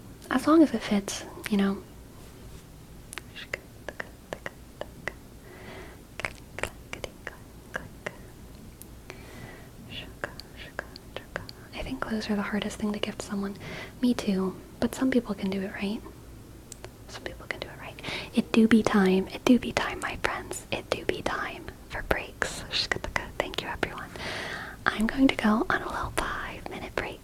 As long as it fits, you know. I think clothes are the hardest thing to gift someone. Me too, but some people can do it right. Some people can do it right. It do be time. It do be time, my friends. It do be time for breaks. Thank you, everyone. I'm going to go on a little 5-minute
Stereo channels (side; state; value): both; identical; correlation 1.00